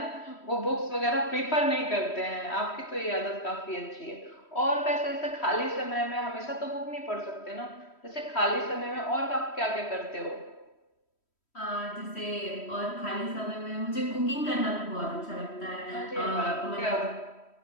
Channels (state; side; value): late; right; 3.1 ms